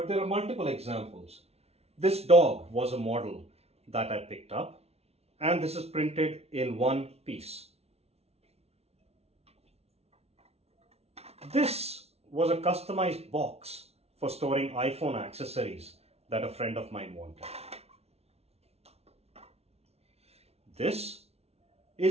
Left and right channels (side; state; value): left; late; 0.30 ms